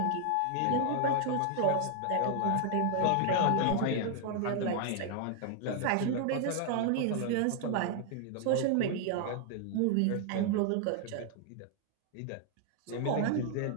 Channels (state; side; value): different; both; correlation 0.00